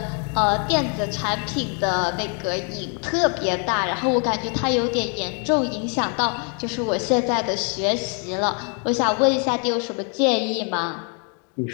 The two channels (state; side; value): quieter; right; 39.5 dB